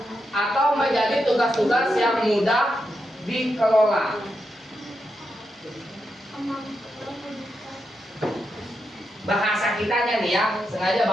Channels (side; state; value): both; normal; correlation 0.85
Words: atau menjadi tugas-tugas yang mudah dikelola. Bahasa kitanya nih ya, sengaja